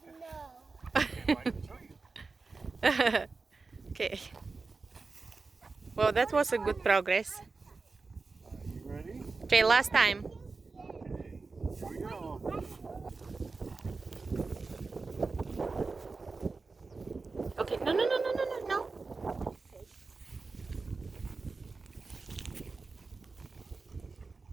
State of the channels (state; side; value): quieter; left; 4.1 dB